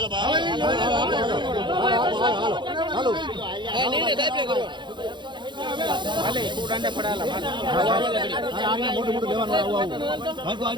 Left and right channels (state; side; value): late; left; 0.23 ms